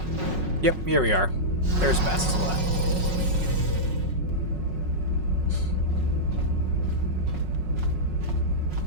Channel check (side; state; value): left; late; 5.4 ms